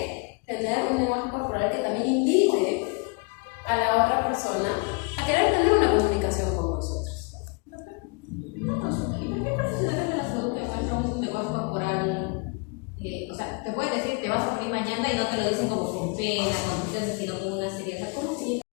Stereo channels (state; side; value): quieter; right; 31.1 dB